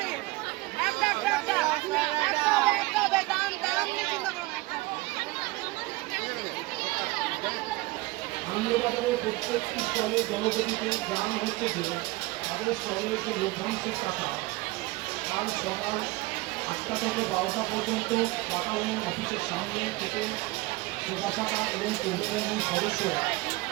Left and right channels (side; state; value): left; quieter; 21.2 dB